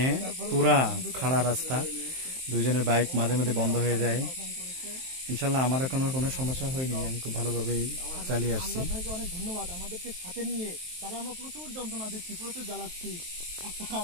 পুরা খাড়া রাস্তা, দুজনের বাইক মাঝে মাঝে বন্ধ হয়ে যায়। ইনশাল্লাহ আমার এখনো কোনো সমস্যা হয়নি, আমি খুব ভালোভাবেই চালিয়ে আসছি। ভাইকে অনেক ধন্যবাদ, আমাদেরকে সাথে নিয়ে। তারা আমরা প্রচুর যন্ত্রণা দিচ্ছি, প্রচুর জ্বালাচ্ছি। একটা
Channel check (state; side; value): late; left; 23 ms